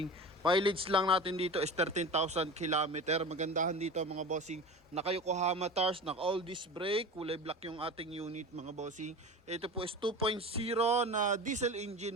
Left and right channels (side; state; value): both; normal; correlation 0.32